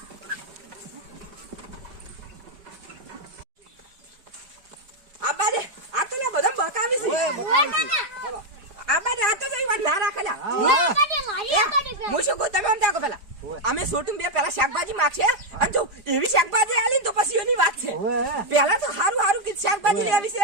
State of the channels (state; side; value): late; left; 5.0 ms